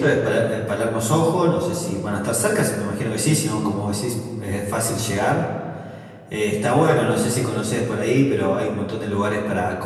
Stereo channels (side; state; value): both; identical; correlation 1.00